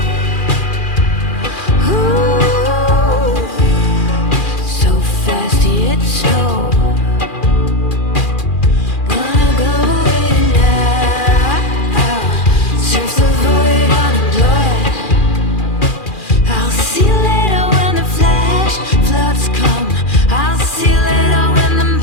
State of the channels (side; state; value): right; late; 2.4 ms